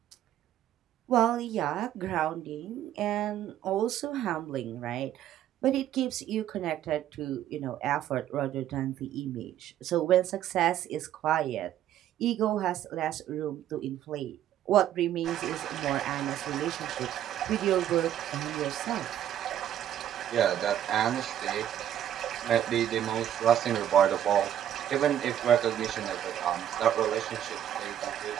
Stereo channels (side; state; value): left; quieter; 11.1 dB